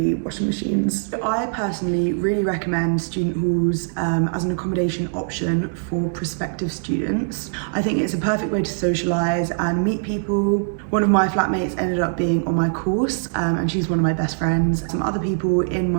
washing machines. I personally really recommend student halls as an accommodation option for prospective students. I think it's a perfect way to socialise and meet people. One of my flatmates ended up being on my course and she's one of my best friends. Some other people in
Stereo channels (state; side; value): silent; left; 64 dB below the other